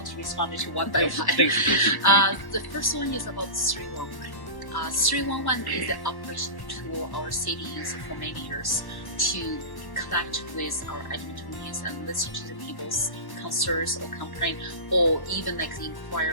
to respond to one by one. Please. The first one is about 311. 311 is the operational tool our city used for many years to connect with our Edmontonians and listen to the people's concerns or complaint, or even like the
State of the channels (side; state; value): right; late; 1.1 ms